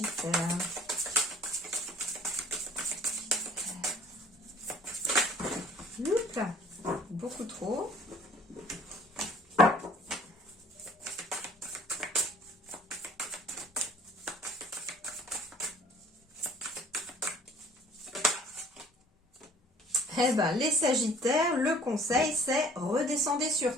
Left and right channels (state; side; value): normal; both; correlation 0.53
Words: Oups, beaucoup trop. Eh ben, les Sagittaires, le conseil, c'est redescendez